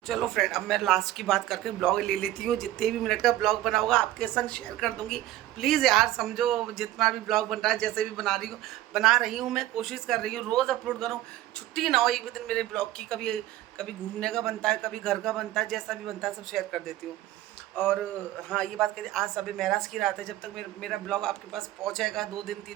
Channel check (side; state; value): left; quieter; 14.7 dB